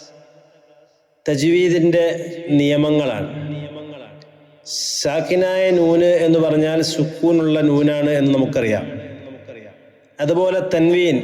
തജ്വീദിൻ്റെ നിയമങ്ങളാണ്. സാക്കിനായ നൂന് എന്ന് പറഞ്ഞാൽ സുക്കൂനുള്ള നൂനാണ് എന്ന് നമുക്കറിയാം. അതുപോലെ തൻവീൻ,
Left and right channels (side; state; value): both; identical; correlation 1.00